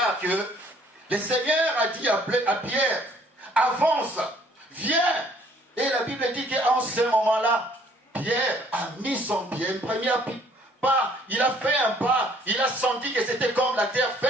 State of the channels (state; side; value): normal; both; correlation 0.60